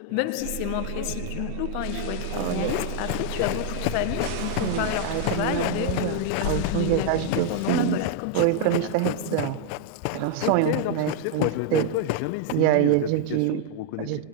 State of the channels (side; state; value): both; different; correlation 0.00